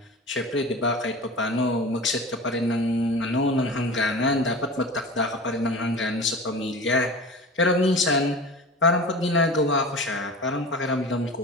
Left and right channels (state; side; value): normal; both; correlation 0.34